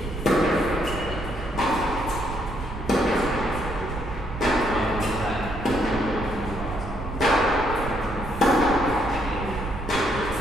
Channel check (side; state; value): right; noise; rumble, 8 dB below the sound